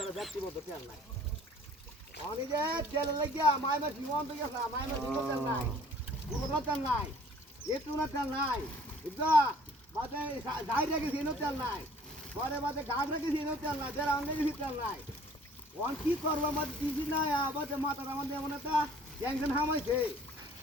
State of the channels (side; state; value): both; normal; correlation 0.54